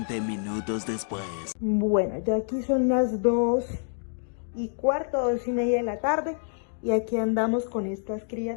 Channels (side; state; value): right; silent; digital silence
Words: minutos después. Bueno, ya aquí son las 2:15, 2:30 de la tarde. Y aquí andamos con estas